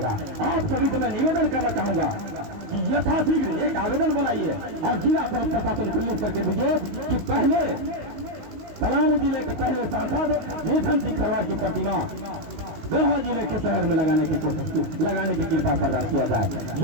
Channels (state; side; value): late; left; 19 ms